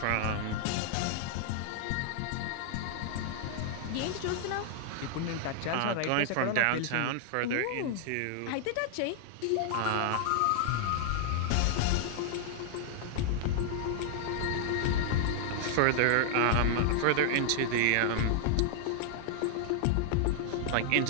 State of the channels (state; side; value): different; both; correlation -0.01